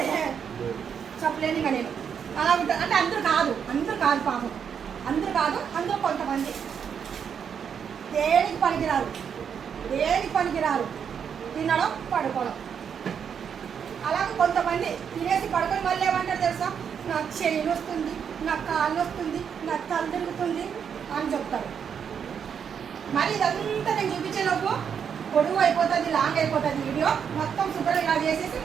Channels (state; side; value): quieter; left; 7.4 dB